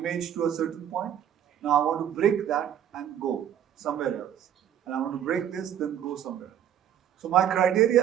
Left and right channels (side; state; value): left; quieter; 10.0 dB